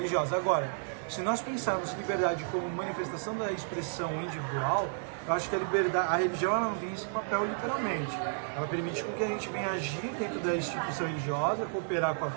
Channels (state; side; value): silent; left; digital silence